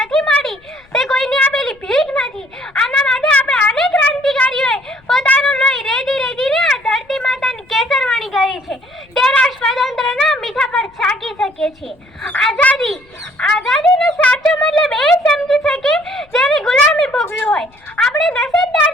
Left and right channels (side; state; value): left; noise; rumble, 30 dB below the sound